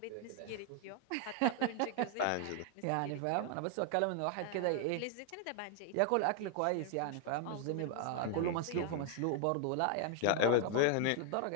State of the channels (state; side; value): different; both; correlation 0.00